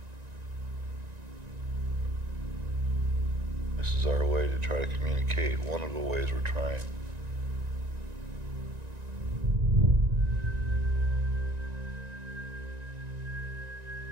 This is our way to try to communicate, one of the ways we're trying.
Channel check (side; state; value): left; late; 1.9 ms